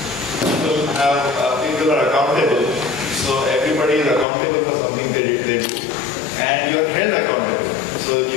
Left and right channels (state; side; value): drops out; right; at 4.2 s